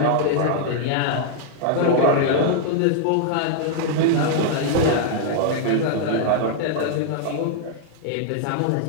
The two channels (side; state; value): both; different; correlation -0.01